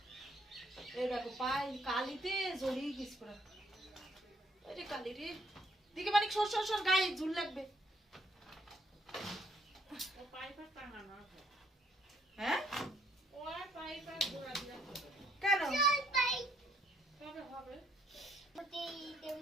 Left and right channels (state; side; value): normal; both; correlation 0.69